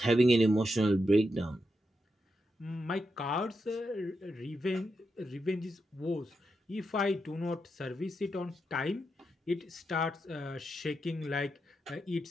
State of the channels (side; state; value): both; normal; correlation 0.85